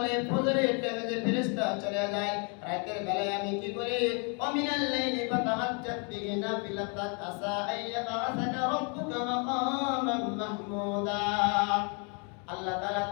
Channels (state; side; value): quieter; right; 36.8 dB